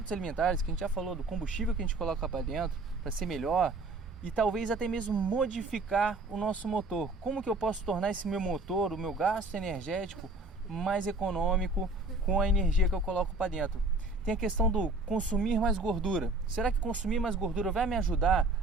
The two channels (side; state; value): left; quieter; 3.1 dB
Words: alimentares, que a gente já falou, do combustível que a gente coloca para dentro, para ser melhor, e talvez até mesmo modificar o nosso motor. Como que eu posso tornar esse meu motor, o meu gasto energético, mais econômico com a energia que eu coloco para dentro? Tem a questão do consumir mais gordura. Será que consumir mais gordura vai me ajudar